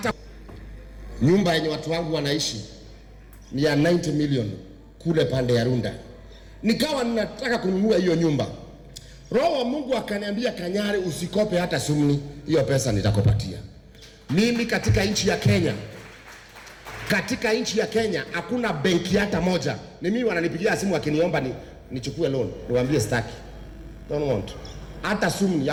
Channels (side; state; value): both; identical; correlation 1.00